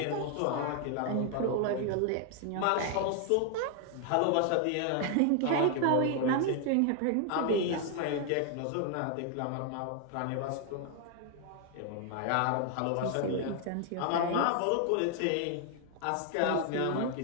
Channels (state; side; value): different; both; correlation 0.00